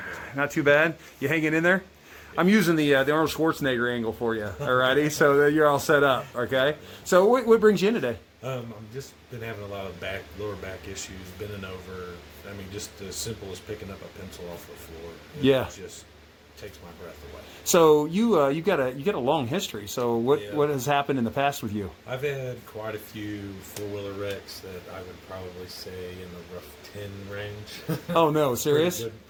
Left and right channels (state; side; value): identical; both; correlation 1.00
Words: bad. Not too bad. You hanging in there? I'm using the Arnold Schwarzenegger angle for you. Alrighty, so you're all set up. Okay. So what brings you in today? I've just been having a lot of lower back issues, bending over. I mean, just as simple as picking up a pencil off the floor. It just takes my breath away. So you got a long history. So what has happened in the past with you? I've had quite a few four-wheeler wrecks that I would probably say in the rough 10 range. Oh no, serious?